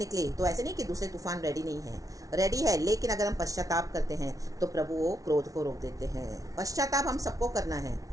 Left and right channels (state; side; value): late; left; 0.17 ms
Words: तो ऐसे नहीं कि दूसरे तूफान रेडी नहीं है, रेडी है, लेकिन अगर हम पश्चाताप करते हैं तो प्रभु वो क्रोध को रोक देते हैं। पश्चाताप हम सबको करना है,